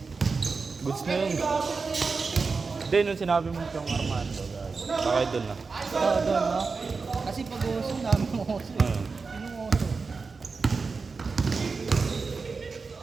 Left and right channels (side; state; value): left; quieter; 4.6 dB